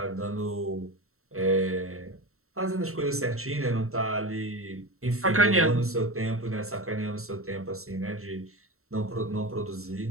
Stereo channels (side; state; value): left; late; 0.63 ms